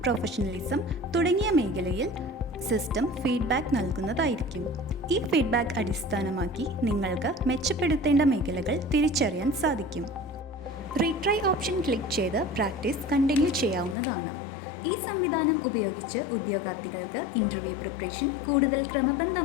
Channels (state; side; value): drops out; right; at 14.0 s